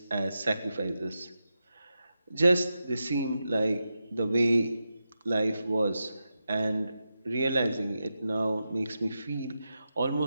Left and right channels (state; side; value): inverted; both; correlation -0.89